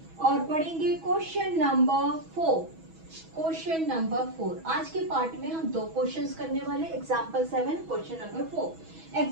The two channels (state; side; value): late; left; 6.2 ms